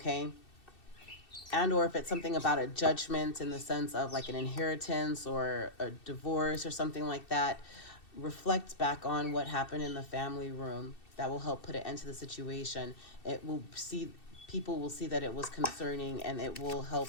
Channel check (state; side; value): late; right; 2.7 ms